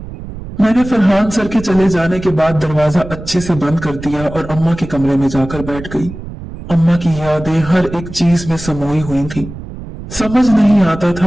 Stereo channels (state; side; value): noise; right; rumble, 12 dB below the sound